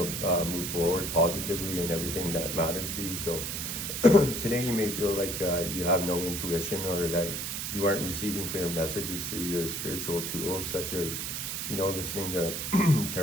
move forward positively in everything that matters to you. So today you may feel like you have no intuition, or that you aren't receiving clear messages through your spiritual tools, such as, listening to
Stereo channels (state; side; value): noise; right; hiss, 3 dB below the sound